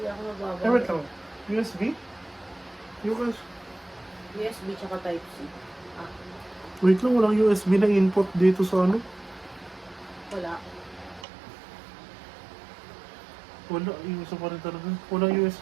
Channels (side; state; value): left; drops out; at 11.2 s